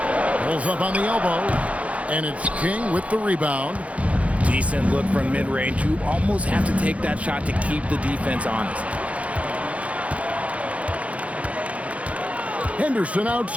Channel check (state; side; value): late; left; 0.065 ms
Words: Pulls up on the elbow. And it's King with the rebound. Decent look from mid-range. You almost have to take that shot to keep the defense honest. Henderson